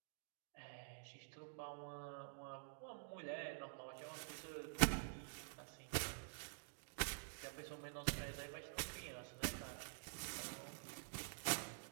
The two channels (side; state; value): left; silent; digital silence